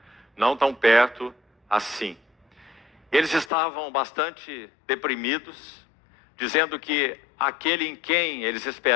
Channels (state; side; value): drops out; right; at 3.5 s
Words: não tão perto assim. Eles estavam bastante deprimidos, dizendo que aquele em quem eles